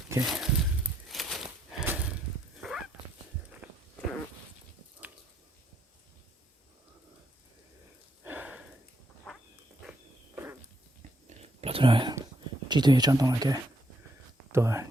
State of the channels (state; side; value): normal; both; correlation 0.74